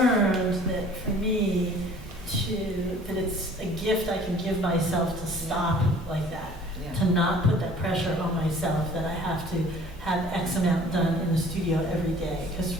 that for me, that it's a gift I can give myself to stop like that, to not put that pressure on myself that I have to have X amount done in the studio every day. Because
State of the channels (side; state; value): both; normal; correlation 0.51